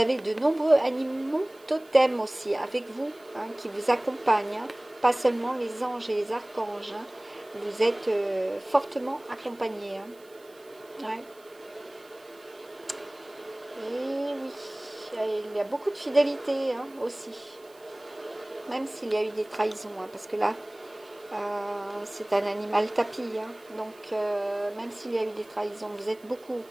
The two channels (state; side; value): noise; right; hiss, 28 dB below the sound